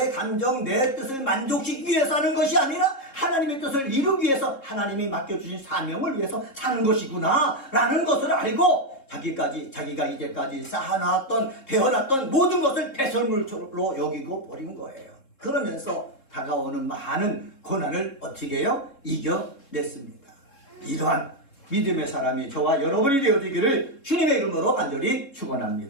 감정, 내 뜻을 만족시키기 위해서 하는 것이 아니라 하나님의 뜻을 이루기 위해서 하나님이 맡겨주신 사명을 위해서 사는 것이구나 라는 것을 알고 자기가 이제까지 쌓아놨던, 배워놨던 모든 것을 배설물로 여기고 버린 거예요. 그러면서 다가오는 많은 고난을 어떻게 해요? 이겨냈습니다. 이러한 믿음의 사람이 저와 여러분이 되어지기를 주님의 이름으로 간절히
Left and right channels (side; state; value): right; late; 3.7 ms